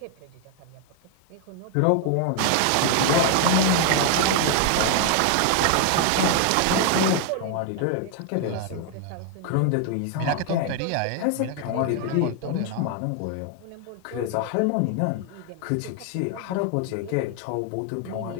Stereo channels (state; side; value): different; both; correlation 0.00